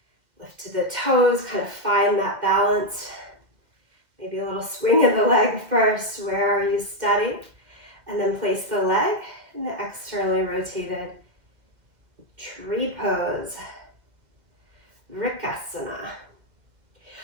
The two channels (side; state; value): left; late; 2.1 ms